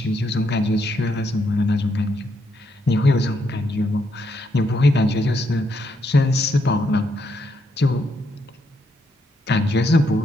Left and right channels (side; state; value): both; normal; correlation 0.77